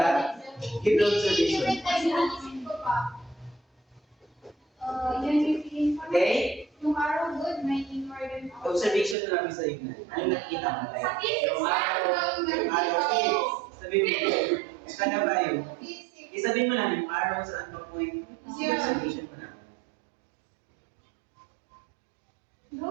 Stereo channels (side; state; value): left; drops out; at 9.2 s